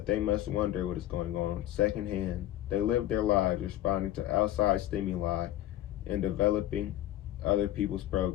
they must wonder what is going on secondhand. They live their lives responding to outside stimuli and developing other people's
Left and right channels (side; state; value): right; quieter; 13.4 dB